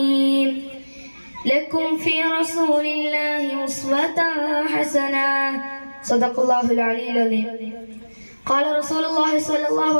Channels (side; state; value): both; inverted; correlation -1.00